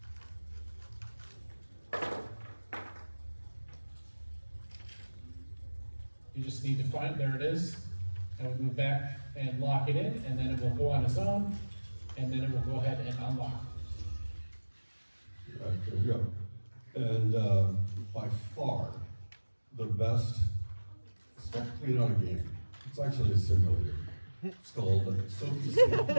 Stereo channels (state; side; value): inverted; both; correlation -1.00